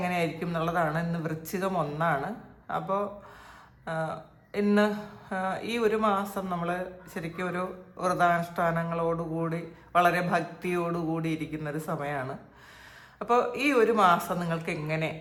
എന്നുള്ളതാണ്. ഇന്ന് വൃശ്ചികം 1 അപ്പോൾ ഇന്ന് ഈ ഒരു മാസം നമ്മൾ ശരിക്കും ഒരു വ്രതാനുഷ്ഠാനങ്ങളോടുകൂടി വളരെ ഭക്തിയോടുകൂടി ഇരിക്കുന്നൊരു സമയമാണ്. അപ്പോൾ ഈ ഒരു മാസം നിങ്ങൾക്ക് എങ്ങനെ,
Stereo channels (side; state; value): both; identical; correlation 1.00